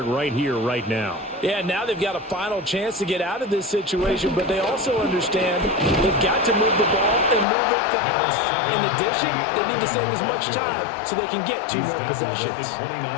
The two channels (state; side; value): drops out; right; at 7.5 s